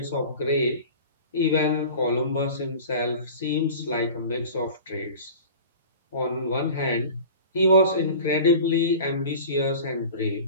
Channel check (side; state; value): both; inverted; correlation -0.39